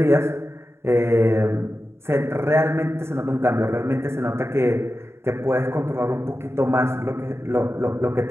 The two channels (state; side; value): late; left; 0.12 ms